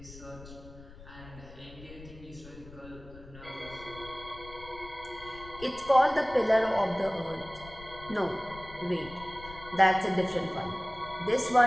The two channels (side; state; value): left; noise; rumble, 17 dB below the sound